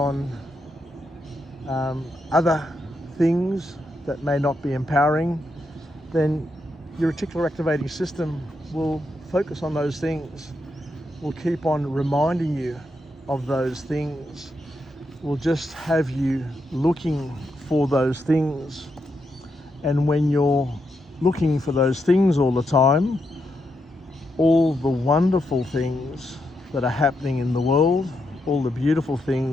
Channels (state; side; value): normal; both; correlation 0.82